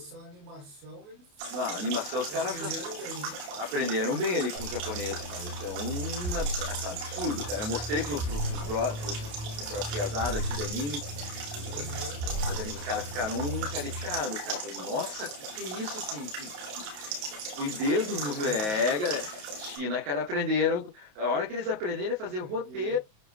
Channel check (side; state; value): left; late; 28 ms